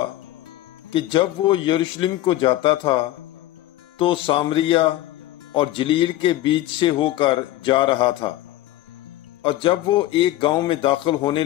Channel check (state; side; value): quieter; right; 15.1 dB